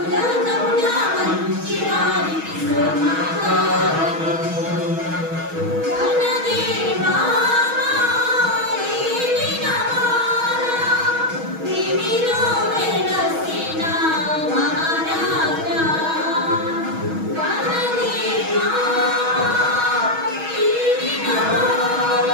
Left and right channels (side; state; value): left; late; 6.2 ms